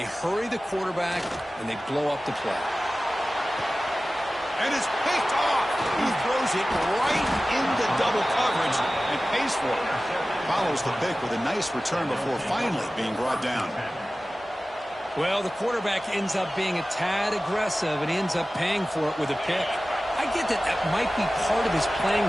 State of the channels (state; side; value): normal; both; correlation 0.96